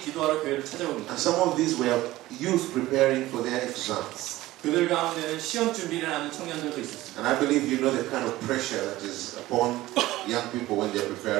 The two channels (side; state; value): left; quieter; 17.0 dB